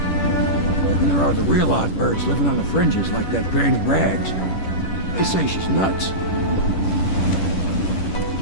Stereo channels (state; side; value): late; right; 10 ms